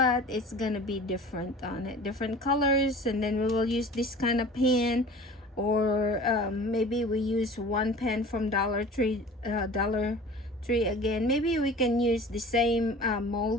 it's gonna be different on it, different colors. And then we will use this kind of pen, or maybe we use one pen from Dollar Tree again. Maybe we can use the same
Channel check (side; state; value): both; normal; correlation 0.42